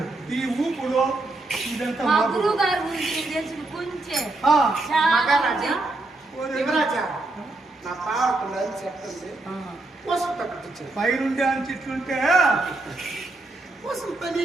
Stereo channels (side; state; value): left; quieter; 3.0 dB